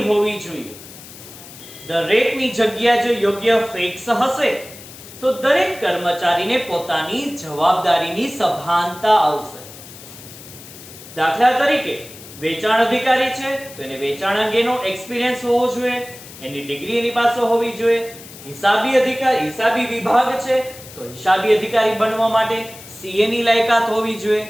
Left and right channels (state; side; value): noise; left; hiss, 17 dB below the sound